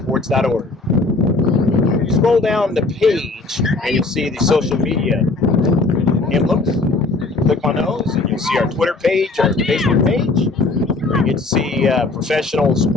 Scroll down the page and you'll see the social media emblems. Click on those and you'll see our Twitter page, our Facebook page, where you get to see professional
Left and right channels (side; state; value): right; quieter; 3.5 dB